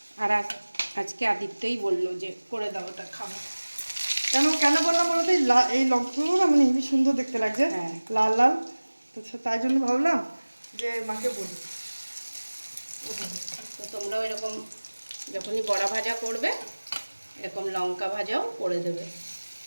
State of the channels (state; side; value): inverted; both; correlation -1.00